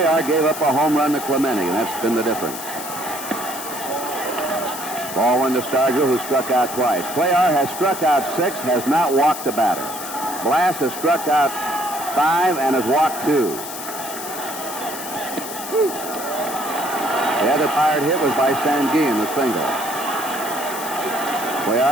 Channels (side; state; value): left; noise; hiss, 9 dB below the sound